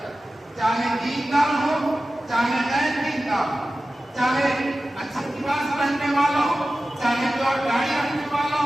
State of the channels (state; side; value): normal; both; correlation 0.95